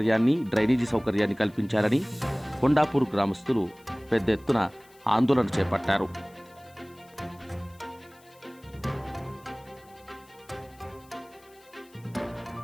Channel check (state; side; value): noise; left; hiss, 28 dB below the sound